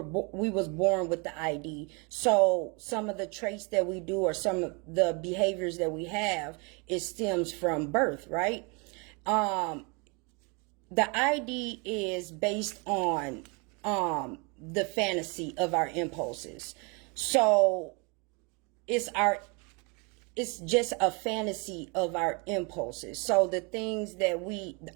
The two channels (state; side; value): quieter; left; 31.8 dB